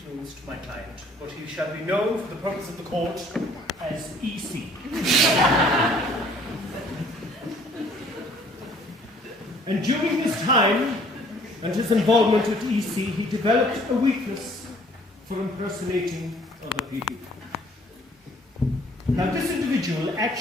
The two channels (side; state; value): both; normal; correlation 0.58